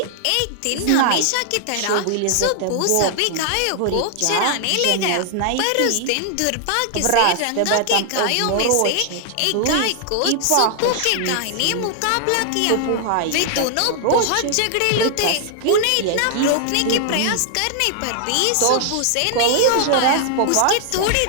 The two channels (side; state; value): both; different; correlation 0.00